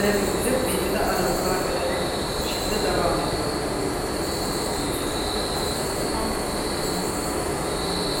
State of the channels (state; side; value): identical; both; correlation 1.00